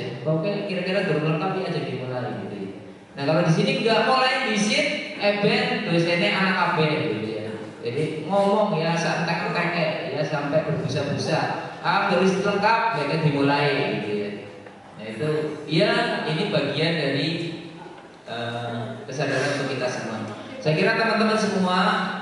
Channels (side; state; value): both; identical; correlation 1.00